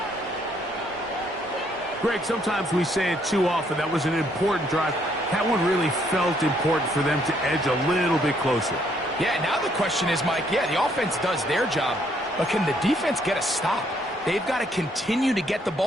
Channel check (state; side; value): normal; both; correlation 0.69